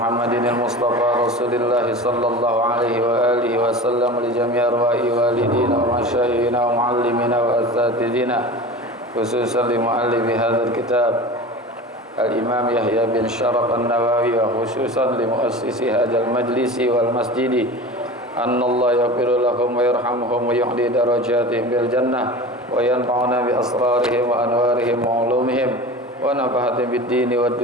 al-Mustafa Rasulillah sallallahu alaihi wa alihi wa sallam li jami' arwahi walidina wa masyayikhina wa muallimina wa asatidina khususan li muallifi hadzal kitab Al-Imam Yahya bin Sharaf An-Nawawi wa khususan li muassisi hadzal majlisi wal masjidi annallahu yaghfiru lahum wa yarhamuhum wa yuhdi darajatihim bil jannah wa yanfa'una bi asrarihim wa anwarihim wa ulumihim wa nafahatin bid dini wad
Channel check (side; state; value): both; normal; correlation 0.34